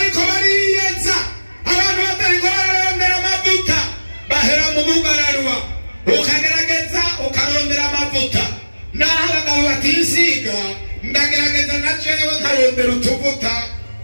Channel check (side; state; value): both; inverted; correlation -1.00